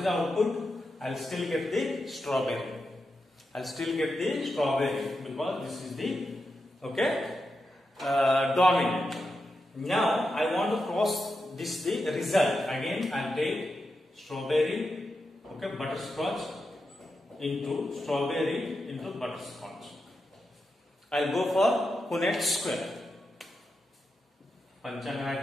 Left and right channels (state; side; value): normal; both; correlation 0.87